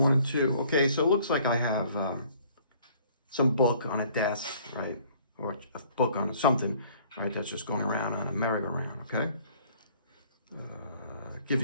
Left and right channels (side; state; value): both; inverted; correlation -0.57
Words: 1 and 2. Okay, so it looks like I have some book on a desk, right? Or a book on something, right? That's just going around on a merry-go-round, okay? Give